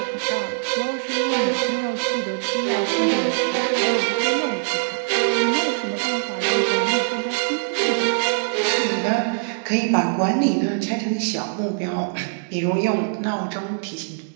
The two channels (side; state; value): left; silent; digital silence